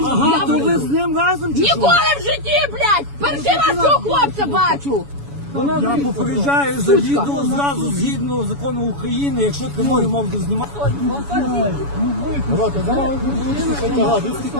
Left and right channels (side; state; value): left; late; 7.1 ms